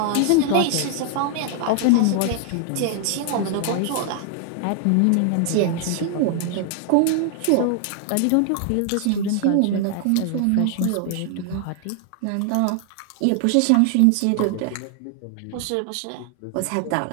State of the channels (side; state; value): both; different; correlation 0.00